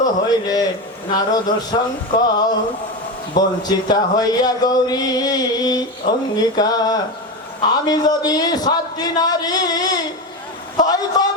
হইলে নারদ শঙ্কর বঞ্চিতা হইয়া গৌরী অঙ্গীকার আমি যদি সাতটি নারী হই তব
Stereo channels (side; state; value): both; normal; correlation 0.18